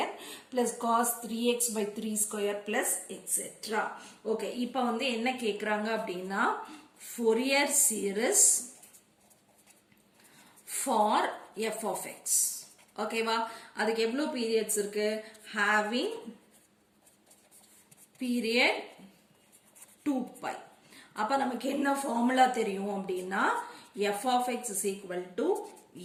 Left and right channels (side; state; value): both; identical; correlation 1.00